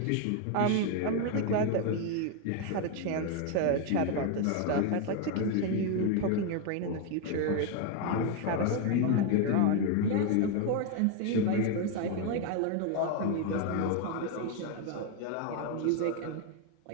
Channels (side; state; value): both; different; correlation 0.01